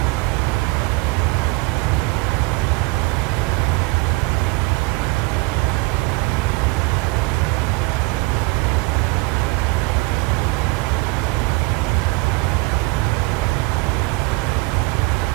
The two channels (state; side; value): quieter; left; 25.6 dB